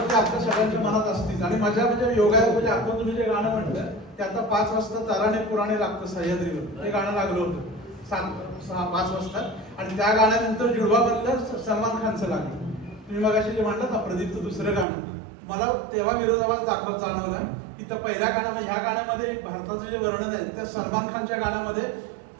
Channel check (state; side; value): drops out; left; at 14.9 s